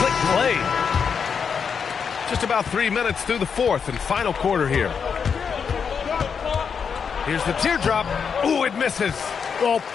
slick play. Just about 3 minutes through the fourth and final quarter here. Here's the teardrop. Ooh, it misses. Well,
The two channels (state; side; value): quieter; right; 6.4 dB